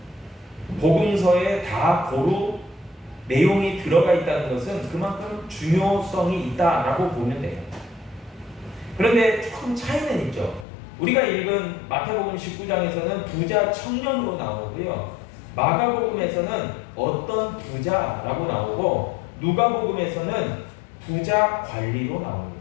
복음서에 다 고루 내용이 들어가 있다는 것은 그만큼 중요성이 있다라고 보면 돼요. 그런데 조금 차이는 있죠. 우리가 읽은 마태복음 19장에서는 부자 청년으로 나오고요. 마가복음에서는 어떤 부자라고 나오고 누가복음에서는 부자 관리로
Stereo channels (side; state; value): right; drops out; at 10.7 s